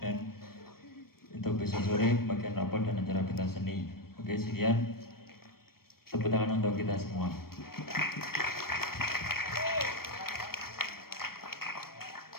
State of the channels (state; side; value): late; right; 0.94 ms